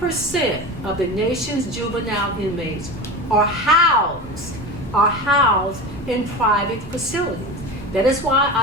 of the nation's juvenile inmates are housed in private facilities. That is why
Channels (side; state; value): right; noise; rumble, 21 dB below the sound